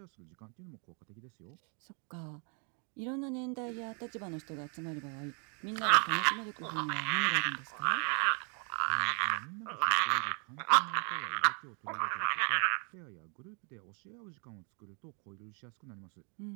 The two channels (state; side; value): quieter; left; 38.3 dB